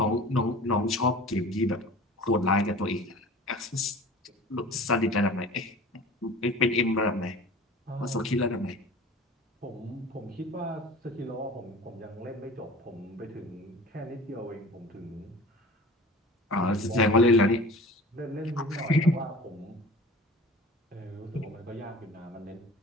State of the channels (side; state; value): both; normal; correlation 0.41